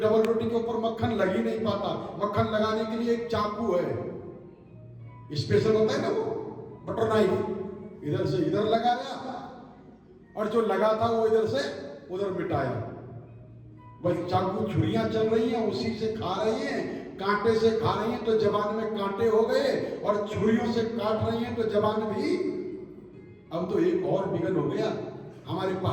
डबल रोटी के ऊपर मक्खन लग ही नहीं पाता। मक्खन लगाने के लिए एक चाकू है, स्पेशल होता है ना वो बटर नाइफ, इधर से इधर लगाया और जो लगा था वो इधर से उधर मिटाया। बस चाकू छुरियां चल रही हैं, उसी से खा रही हैं, कांटे से खा रही हैं तो जबान में कांटे हो गए, और छुरियों से काट रही हैं तो जबान भी। अब तो एक और विघन हो गया हमारे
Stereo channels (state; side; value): identical; both; correlation 1.00